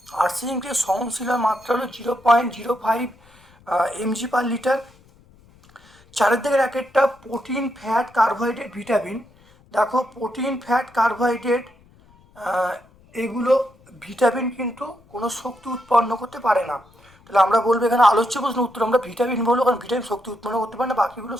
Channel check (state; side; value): noise; left; rumble, 28 dB below the sound